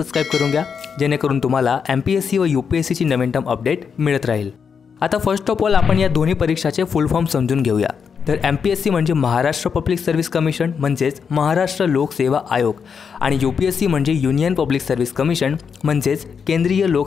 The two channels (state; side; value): quieter; right; 6.4 dB